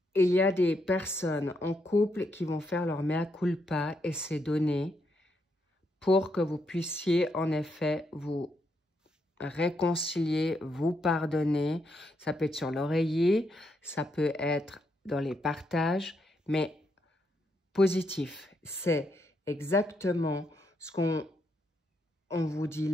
Il y a des personnes en couple qui vont faire leur mea culpa et c'est donné pour que vous puissiez en effet vous réconcilier, vous pardonner. Ça peut être sur l'oreiller, ça peut être dans les partages, mais positif. C'est exactement ce qu'on vous dit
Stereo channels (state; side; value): normal; both; correlation 0.78